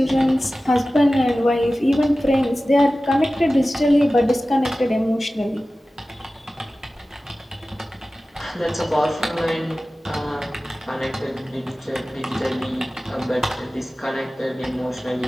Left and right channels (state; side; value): normal; both; correlation 0.96